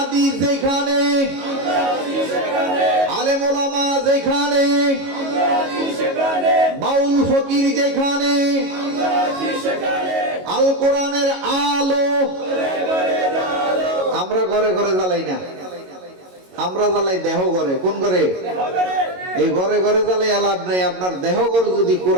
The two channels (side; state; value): left; late; 22 ms